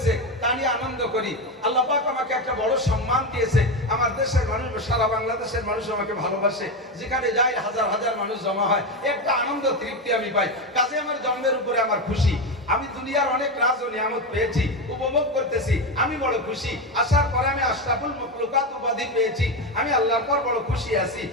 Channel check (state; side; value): normal; both; correlation 0.14